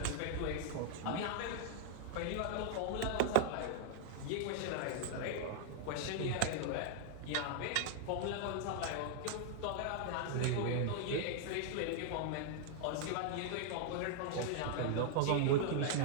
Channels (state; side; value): different; both; correlation -0.01